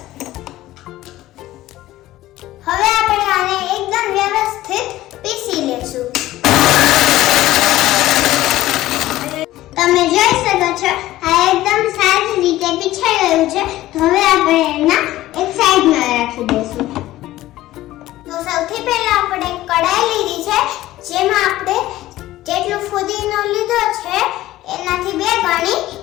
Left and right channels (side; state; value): right; quieter; 15.7 dB